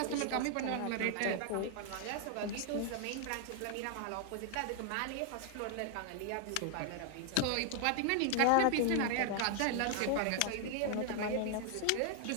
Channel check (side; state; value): both; different; correlation 0.00